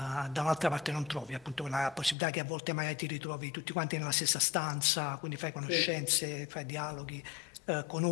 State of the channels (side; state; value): right; drops out; at 2.1 s